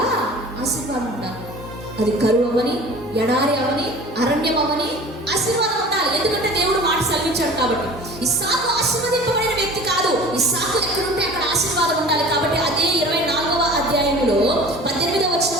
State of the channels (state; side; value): normal; both; correlation 0.42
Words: ఆశీర్వాదం ఉండాలి. అది కరువు అవని, ఎడారి అవని, అరణ్యం అవని, ఆశీర్వాదం ఉండాలి. ఎందుకంటే దేవుడు మాట సెలవించాడు కాబట్టి. ఇస్సాకు ఆశీర్వదింపబడిన వ్యక్తి కాదు, ఇస్సాకు ఎక్కడుంటే అక్కడ ఆశీర్వాదం ఉండాలి. కాబట్టి అదే 24వ అధ్యాయంలో 18వ